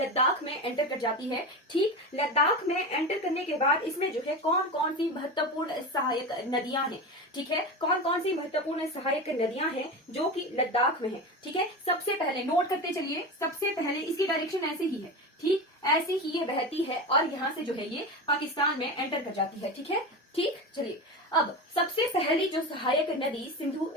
में एंटर कर जाती है। ठीक, लद्दाख में एंटर करने के बाद इसमें जो है कौन कौन सी महत्वपूर्ण सहायक नदियां हैं, ठीक है, कौन कौन सी महत्वपूर्ण सहायक नदियां हैं जो कि लद्दाख में है, ठीक है। सबसे पहले नोट करते चलिए, सबसे पहले इसकी डायरेक्शन ऐसे ही है, ठीक, ऐसे ही ये बहती है और यहाँ से जो है ये पाकिस्तान में एंटर कर जाती है, ठीक है। ठीक, चलिए, अब सबसे पहली जो सहायक नदी सिंधु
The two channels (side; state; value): both; normal; correlation 0.24